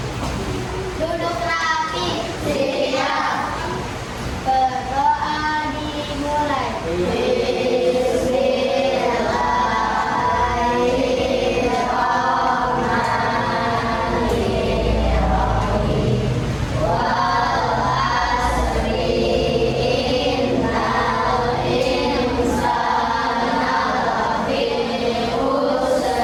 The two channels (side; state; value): both; identical; correlation 1.00